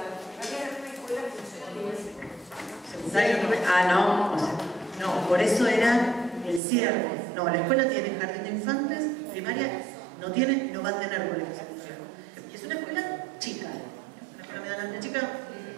No, o sea, no, por eso era el cierre. No, la escuela tiene jardín de infantes, primaria no tiene, no va a tener colegio secundario. Y es una escuela chica, una escuela medianamente chica.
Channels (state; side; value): drops out; left; at 6.6 s